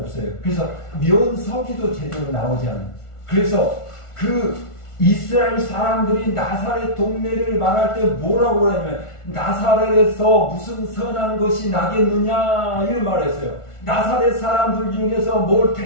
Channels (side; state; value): right; late; 1.4 ms